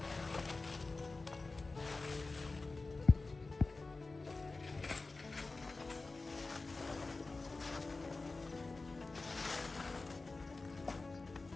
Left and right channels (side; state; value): right; quieter; 3.6 dB